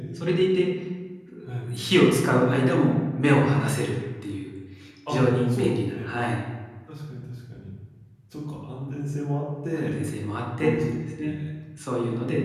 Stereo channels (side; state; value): both; identical; correlation 1.00